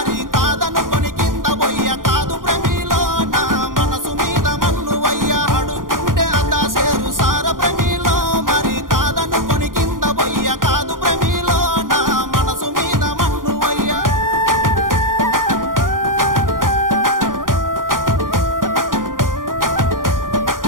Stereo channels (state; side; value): late; left; 0.90 ms